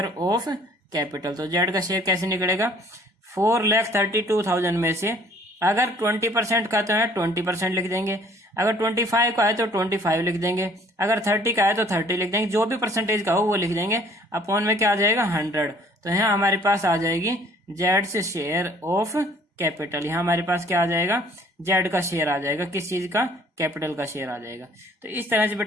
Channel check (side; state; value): both; normal; correlation 0.57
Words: ऑफ कैपिटल, तो जेड का शेयर कैसे निकलेगा? 4,32,000 में से अगर 20% का तो है 20% लिख देंगे, अगर 25 का है तो 25 लिख देंगे, अगर 30 का है तो 30 लिख देंगे, जो भी परसेंटेज का हो वो लिख देंगे। अपॉन में क्या आ जाएगा? 100। तो यहाँ हमारे पास आ जाएगी जेड से शेयर ऑफ कैपिटल। यहाँ हमारे पास क्या आ जाएगा? जेड का शेयर आ जाएगा। किस चीज का? कैपिटल का शेयर आ जाएगा। तो इस तरह से